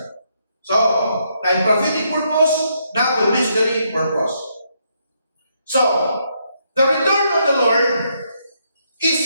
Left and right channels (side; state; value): both; inverted; correlation -0.76